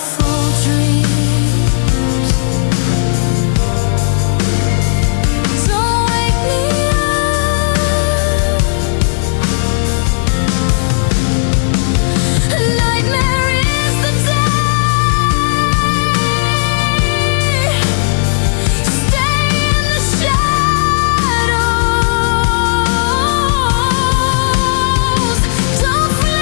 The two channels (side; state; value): right; silent; digital silence